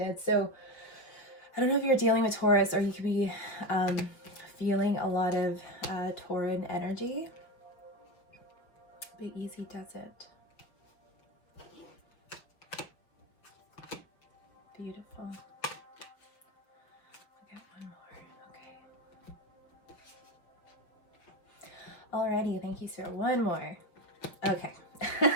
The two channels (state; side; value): late; right; 5.8 ms